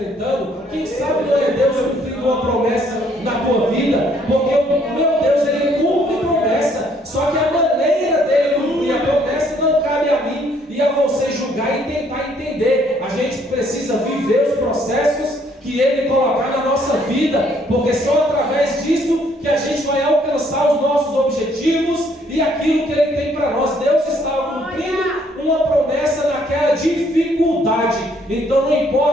Quem sabe não é Deus cumprindo uma promessa na tua vida? Porque o meu Deus, Ele cumpre promessa. Só que a maneira dele cumprir a promessa não cabe a mim e a você julgar e tentar entender. A gente precisa viver os processos que Ele colocar na nossa vida, porque só através disso que a gente vai alcançar os nossos objetivos e aquilo que Ele tem para nós. Deus estava cumprindo uma promessa naquela dificuldade. Então não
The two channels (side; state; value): both; normal; correlation 0.65